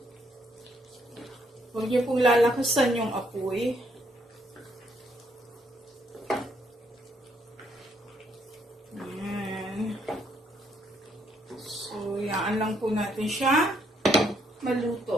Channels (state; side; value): normal; both; correlation 0.71